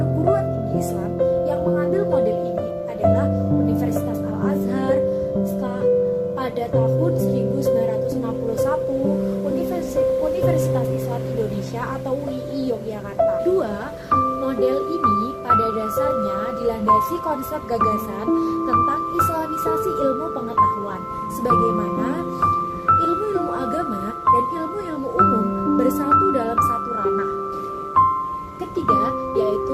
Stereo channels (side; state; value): both; identical; correlation 1.00